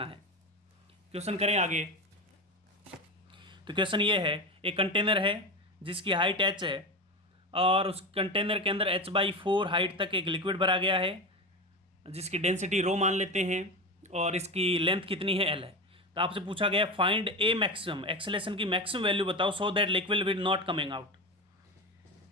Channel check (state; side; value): normal; both; correlation 0.22